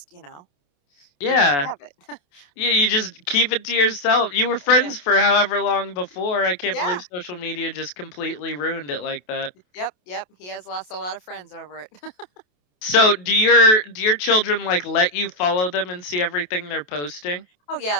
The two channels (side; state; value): right; late; 28 ms